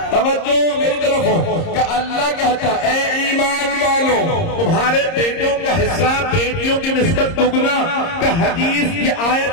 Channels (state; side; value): late; right; 30 ms